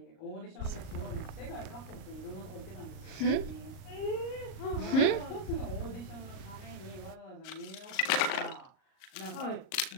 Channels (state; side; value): late; right; 38 ms